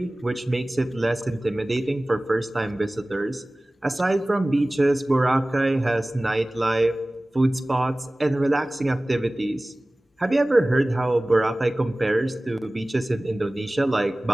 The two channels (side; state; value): both; normal; correlation 0.98